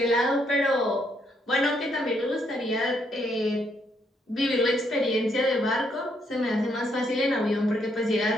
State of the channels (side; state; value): both; normal; correlation 0.74